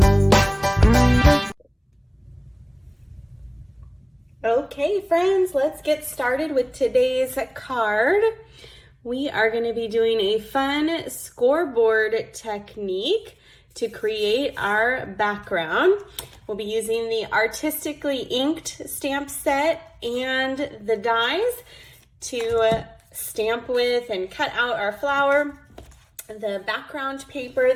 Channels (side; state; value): both; identical; correlation 1.00